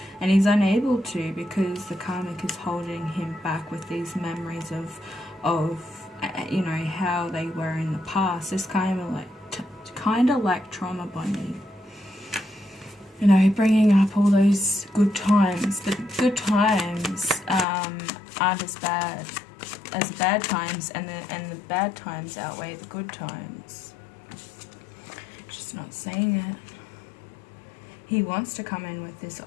And he's unable to because the karmic is holding him back with these memories of you know, how they were in the past. It's kind of like trauma bonding. You know, bringing up all those good times. But good times aren't as bad as the bad times, and the bad times outweigh the good times. just not seeing it. He wants to come in with this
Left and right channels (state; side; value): drops out; right; at 17.7 s